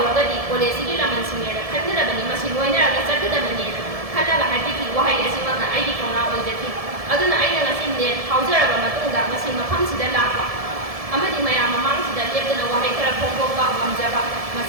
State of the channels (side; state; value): left; late; 1.7 ms